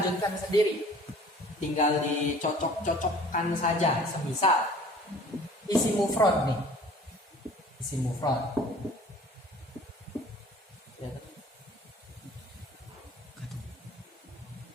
sendiri. Tinggal dicocok-cocokkan saja. Semisal isi mufrad nih. Isi mufrad.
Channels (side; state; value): both; normal; correlation 0.49